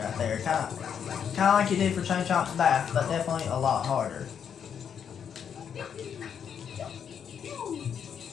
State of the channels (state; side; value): quieter; right; 7.8 dB